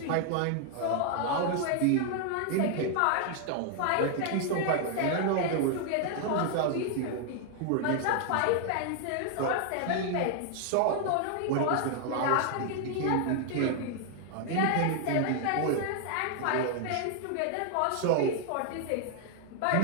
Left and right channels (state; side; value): different; both; correlation 0.00